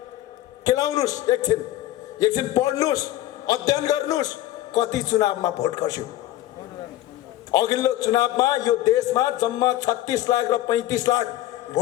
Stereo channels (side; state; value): right; quieter; 14.4 dB